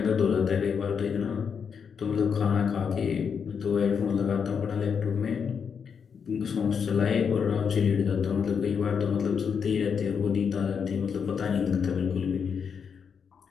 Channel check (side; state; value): right; quieter; 6.6 dB